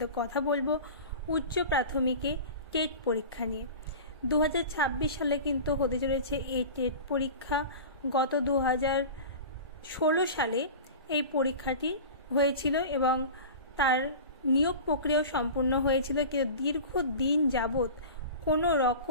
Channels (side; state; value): both; inverted; correlation -0.34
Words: কথা বলবো উচ্চ প্রাথমিকে টেট পরীক্ষা নিয়ে। 2026 সালে কিন্তু হতে চলেছে এই টেট পরীক্ষা। গত 2016 সালে এই পরীক্ষাটি হয়েছিল এবং তার নিয়োগ প্রক্রিয়া সম্পূর্ণ হয়েছিল, কিন্তু দীর্ঘদিন যাবত কোনো